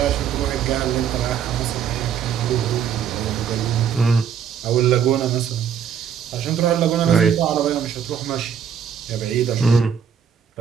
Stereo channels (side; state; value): left; quieter; 7.9 dB